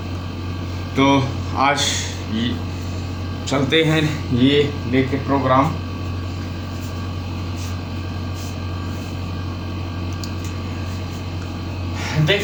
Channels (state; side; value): identical; both; correlation 1.00